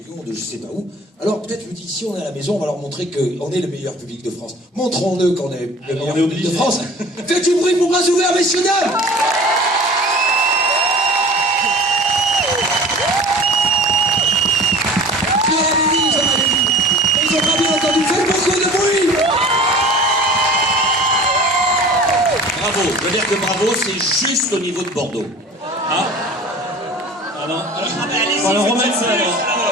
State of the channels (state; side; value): normal; both; correlation 0.42